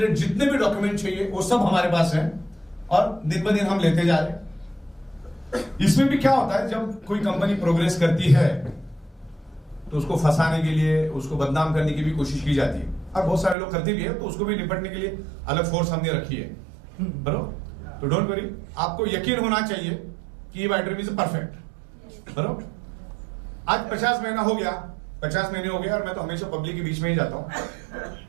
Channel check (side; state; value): left; drops out; at 13.6 s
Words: जितने भी डॉक्यूमेंट चाहिए वो सब हमारे पास है, और दिन ब दिन हम लेते जा रहे हैं। इसमें भी क्या होता है, जब कोई कंपनी प्रोग्रेस करती है तो उसको फंसाने के लिए, उसको बदनाम करने की भी कोशिश की जाती है, और बहुत सारे लोग करते भी है, तो उसको भी निपटने के लिए अलग फोर्स हमने रखी है, बरोबर। तो डोंट वरी, आपको यकीन होना चाहिए कि ये वाइट ड्रीम इज परफेक्ट, बरोबर। आज 50 महीना हो गया, 50 महीने हो गए, और मैं तो हमेशा पब्लिक के बीच में ही जाता हूं।